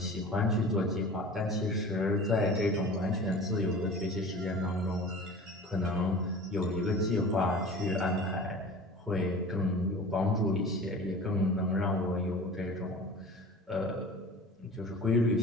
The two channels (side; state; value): both; normal; correlation 0.39